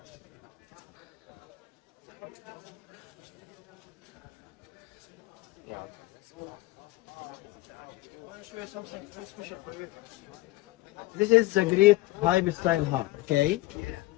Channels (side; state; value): right; quieter; 19.1 dB